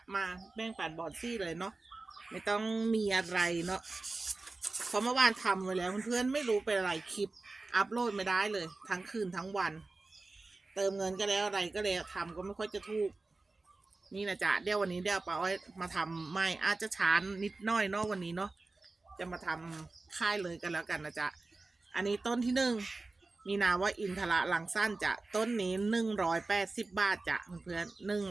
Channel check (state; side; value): quieter; left; 3.4 dB